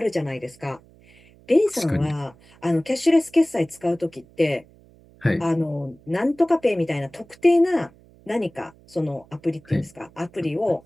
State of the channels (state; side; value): noise; right; hum, 27 dB below the sound